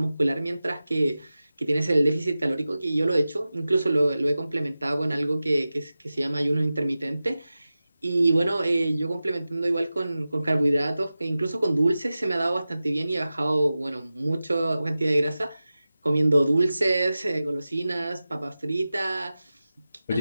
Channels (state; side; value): inverted; both; correlation -0.95